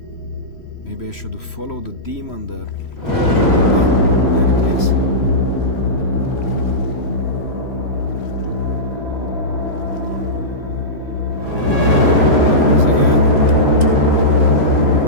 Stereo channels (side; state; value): right; late; 3.1 ms